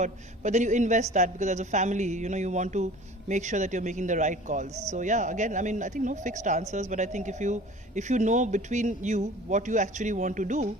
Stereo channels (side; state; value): both; normal; correlation 0.44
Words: But then you invest that because as a family, you want to make sure that you're making the right calls. So yeah, again, I think no fixed answers, but I think if you know between you what you actually want to do,